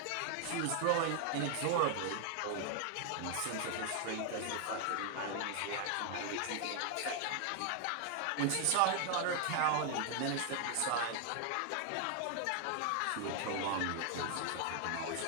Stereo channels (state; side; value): different; both; correlation 0.00